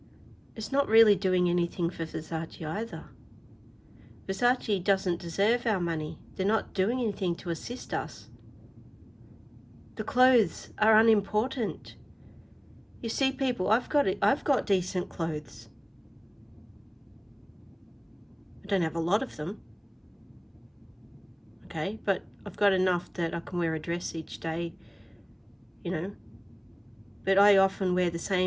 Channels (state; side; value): identical; both; correlation 1.00